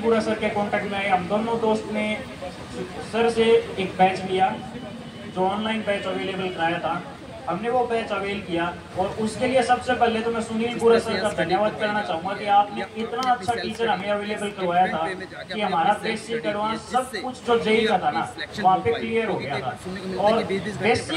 बुरा सर के कांटेक्ट में आए। हम दोनों दोस्त ने सर से एक बैच लिया, जो ऑनलाइन बैच अवेलेबल कराया था, हमने वो बैच अवेल किया। और उसके लिए सबसे पहले तो मैं सुनील बुरा सर का धन्यवाद करना चाहूँगा कि आपने इतना अच्छा टीचर हमें अवेलेबल करवाया था कि हमारा बेसिक एडवांस सब कुछ जो जेई का था ना, वहाँ पे क्लियर हो गया था। और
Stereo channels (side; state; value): both; identical; correlation 1.00